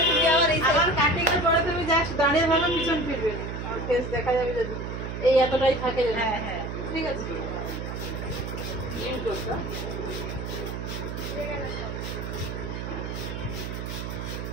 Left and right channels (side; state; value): right; noise; hum, 5 dB below the sound